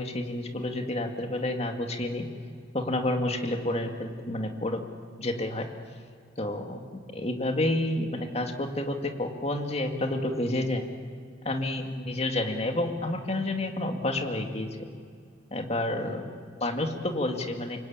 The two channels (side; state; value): both; normal; correlation 0.53